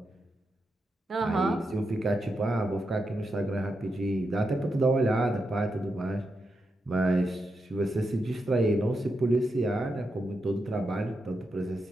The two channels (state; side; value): normal; both; correlation 0.86